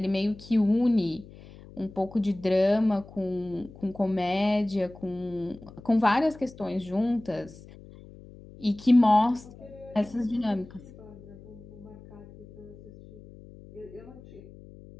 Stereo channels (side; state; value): left; noise; hum, 19 dB below the sound